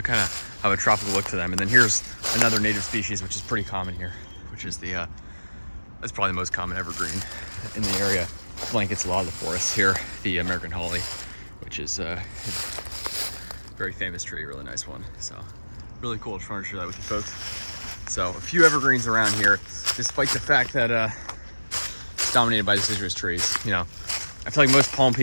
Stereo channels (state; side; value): inverted; both; correlation -1.00